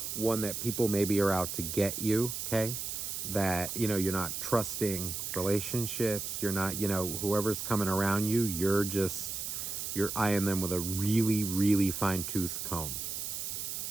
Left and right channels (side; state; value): right; noise; hiss, 4 dB below the sound